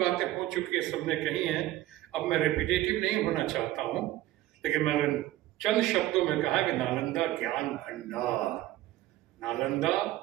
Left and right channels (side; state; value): left; quieter; 15.2 dB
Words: हो चुकी है, सबने कही हैं। अब मैं रिपीटेटिव नहीं होना चाहता हूं, लेकिन मैंने चंद शब्दों में कहा कि नालंदा ज्ञान भंडार, नालंदा